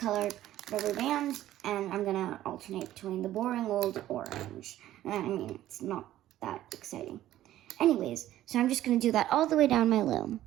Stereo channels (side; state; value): left; quieter; 13.5 dB